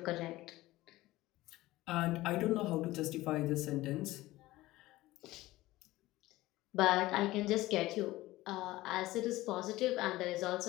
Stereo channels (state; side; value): quieter; right; 17.7 dB